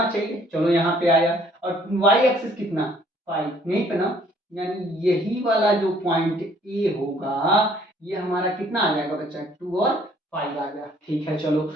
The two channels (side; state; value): both; normal; correlation 0.60